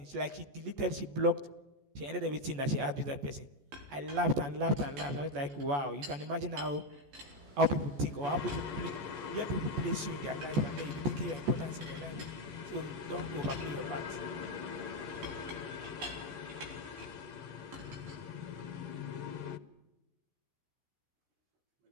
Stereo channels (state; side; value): late; left; 14 ms